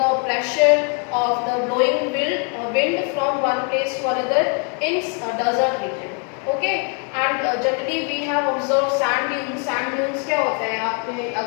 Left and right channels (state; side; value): quieter; right; 38.9 dB